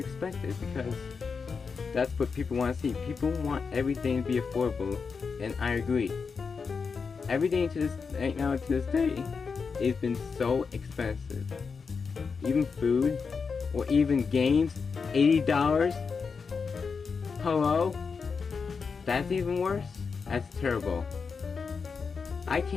because that's what people want to see. People want everything to be affordable, and I agree. Everything right now to this day has been so expensive. Even food, or even games, $80. Hello? That's even worse? That's terrible. I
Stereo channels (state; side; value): quieter; right; 5.3 dB